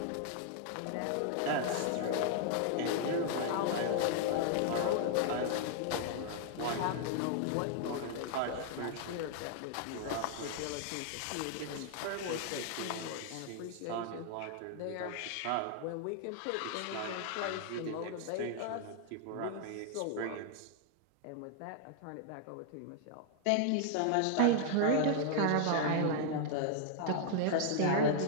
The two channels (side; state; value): both; different; correlation 0.00